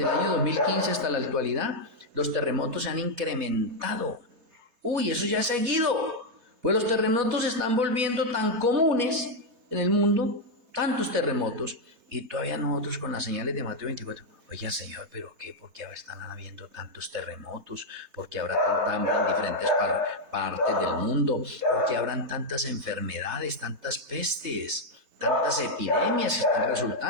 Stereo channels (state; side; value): late; left; 3.3 ms